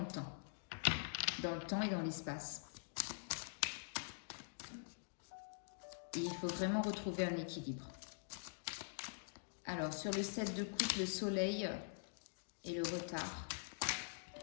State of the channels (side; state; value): right; silent; digital silence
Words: temps. Dans le temps et dans l'espace. Et il faut vraiment retrouver un équilibre. Alors sur le 7 de coupe, le soleil et le retard.